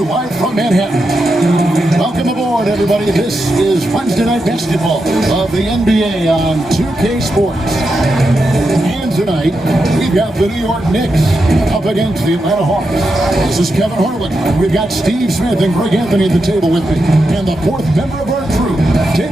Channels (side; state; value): both; normal; correlation 0.86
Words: live from Manhattan. Welcome aboard, everybody. This is Wednesday Night Basketball of the NBA on 2K Sports. And tonight, we've got the New York Knicks up against the Atlanta Hawks. This is Kevin Harlan. We've got Steve Smith and Greg Anthony at the table with me. And the fourth member of our crew,